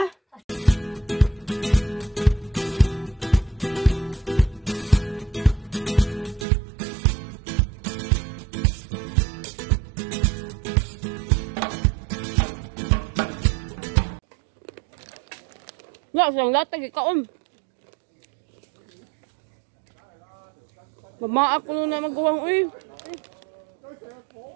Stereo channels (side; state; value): left; drops out; at 6.5 s